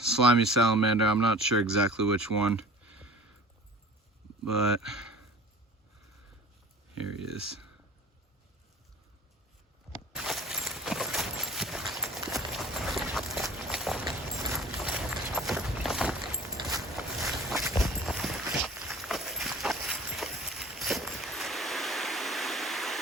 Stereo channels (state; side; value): normal; both; correlation 0.43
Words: salamander. I'm not sure exactly which one, but here he is.